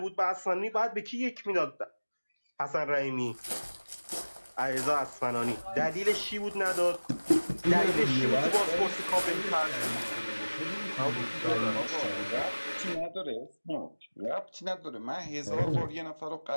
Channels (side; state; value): both; inverted; correlation -1.00